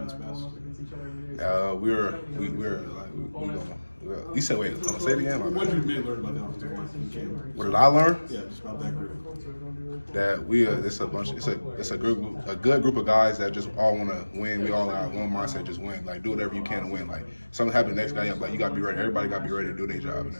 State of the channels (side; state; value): both; inverted; correlation -1.00